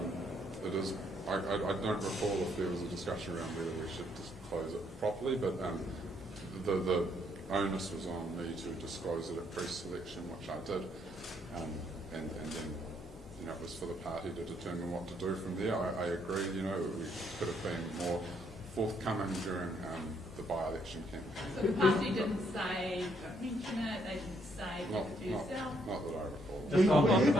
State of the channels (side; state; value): both; normal; correlation 0.71